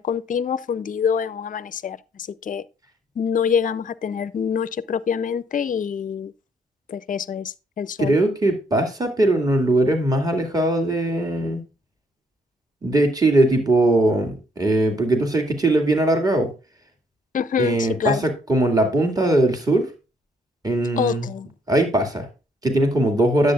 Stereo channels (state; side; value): normal; both; correlation 0.68